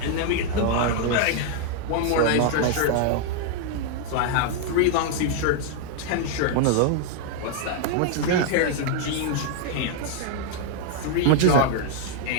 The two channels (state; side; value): different; both; correlation 0.00